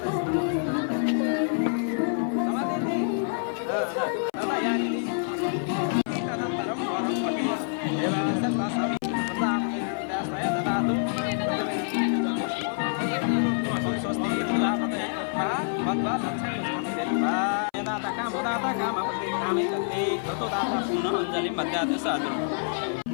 समाधेति तदा यानिनि तदनन्तरं वरं पठि देवास तस्मै प्रदापय ददातु स्वस्ति प्रजापतये मद्वा दक्षिणं कृत्वा कामपत्रिकामे दत्ते ततो दाता पुनः अञ्जलिं मध्याति साधु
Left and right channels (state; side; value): silent; right; 60 dB below the other